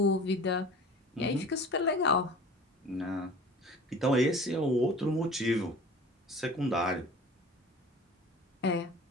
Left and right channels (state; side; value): normal; both; correlation 0.42